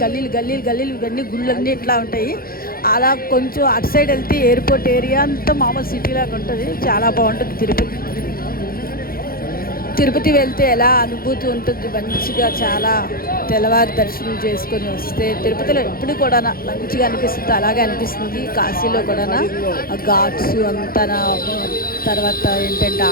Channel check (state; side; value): late; right; 0.43 ms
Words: గల్లీలు ఇవన్నీ గుళ్ళన్నీ ఇట్లా ఉంటాయి. అలా కొంచెం అటు సైడ్ వెళ్తే ఎయిర్పోర్ట్ ఏరియా అంతా మామూలు సిటీలాగా ఉంటుంది. చాలా బాగుంటుంది. తిరుపతి వెళ్తే ఎలా అనుభూతి ఉంటుంది, మంచిగా చాలా తెల్లవారి దర్శనం చేసుకొని వస్తే తిరుపతిలో ఎప్పుడు కూడా మంచిగా అనిపిస్తుంది. అలాగే అనిపిస్తుంది కాశీలో కూడా. ఘాట్స్ అంతా, తర్వాత ఏంటంటే